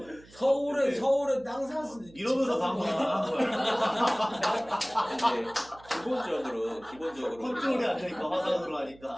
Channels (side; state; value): right; noise; hum, 24 dB below the sound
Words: 서울에 땅 샀으니 이러면서 방송을 하는 거야. 이제 기본적으로 컨트롤이 안 되니까 화상으로